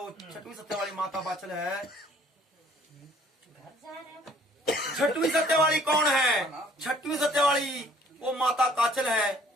सत्या वाली माता बाचल है। छठवीं सत्या वाली कौन है? छठवीं सत्या वाली वो माता काचल है,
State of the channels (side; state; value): both; normal; correlation 0.58